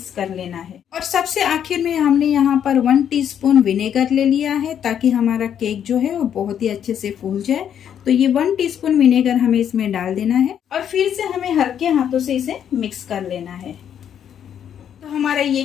कर लेना है। और सबसे आखिर में हमने यहाँ पर 1 टीस्पून विनेगर ले लिया है ताकि हमारा केक जो है वो बहुत ही अच्छे से फूल जाए। तो ये 1 टीस्पून विनेगर हमें इसमें डाल देना है और फिर से हमें हल्के हाथों से इसे मिक्स कर लेना है। तो हमारा ये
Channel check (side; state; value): right; quieter; 9.1 dB